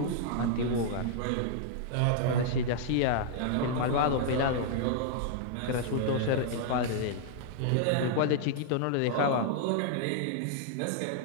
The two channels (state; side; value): different; both; correlation -0.01